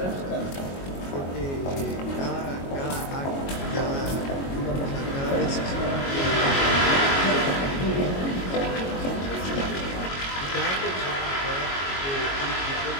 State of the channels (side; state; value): right; late; 22 ms